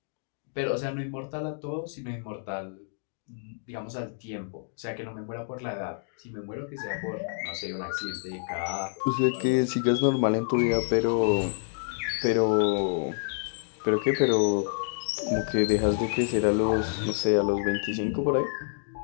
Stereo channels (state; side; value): silent; right; digital silence